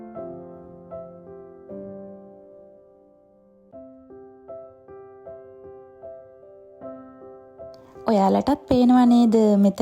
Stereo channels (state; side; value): identical; both; correlation 1.00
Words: ඔයාලටත් පේනවා නේද